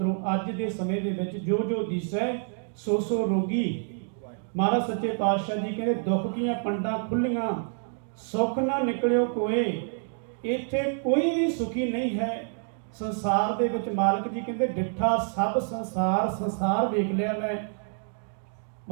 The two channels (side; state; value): left; silent; 60 dB below the other